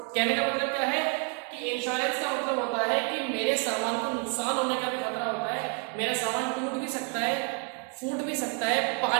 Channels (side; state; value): left; quieter; 39.5 dB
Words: कहने का मतलब क्या है कि इंश्योरेंस का मतलब होता है कि मेरे सामान को नुकसान होने का भी खतरा होता है, मेरा सामान टूट भी सकता है, फूट भी सकता है,